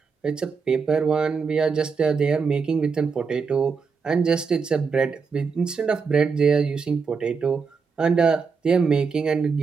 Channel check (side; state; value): left; quieter; 5.3 dB